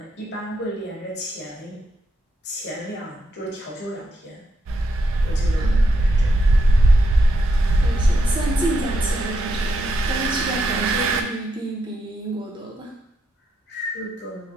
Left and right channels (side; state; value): both; normal; correlation 0.81